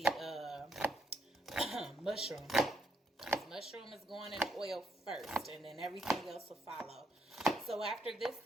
mushroom. Mushroom is going in oil first, and then everything else will follow. So after this,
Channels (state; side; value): normal; both; correlation 0.76